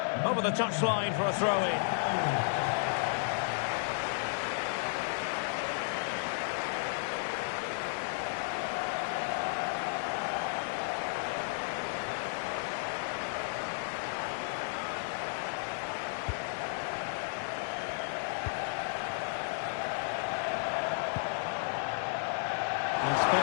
Over the touchline for a throw-in.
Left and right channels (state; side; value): silent; right; digital silence